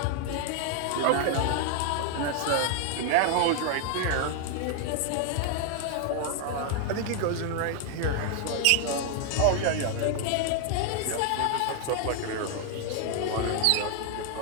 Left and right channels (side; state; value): both; different; correlation 0.00